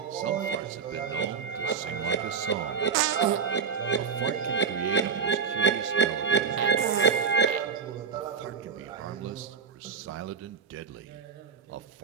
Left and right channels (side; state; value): left; quieter; 6.1 dB